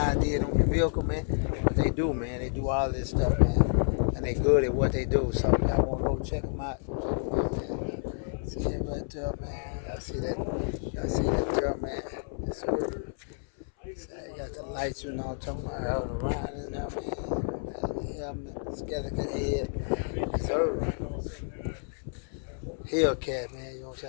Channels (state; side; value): silent; right; 58 dB below the other